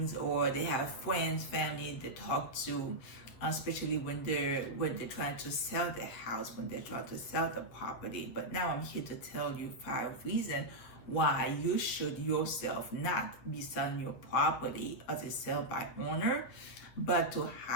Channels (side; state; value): right; late; 8.8 ms